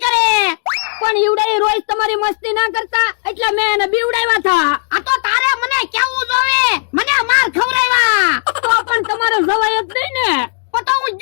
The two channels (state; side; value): silent; right; digital silence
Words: કરે. પણ ઈવડાઈ રોજ તમારી મસ્તી ના કરતા એટલે મેં એને બીવડાવ્યા હતા. આ તો તારે મને કેવું જોવે. મને માર ખવડાવ્યા. તો પણ તમારે જવાય જ નહીં ને. તો હું